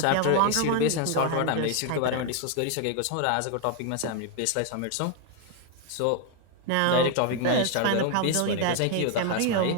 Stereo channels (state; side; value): different; both; correlation 0.00